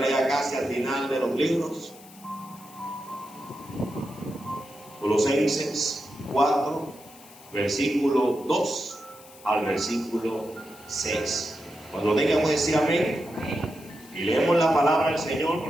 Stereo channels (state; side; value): noise; left; hiss, 21 dB below the sound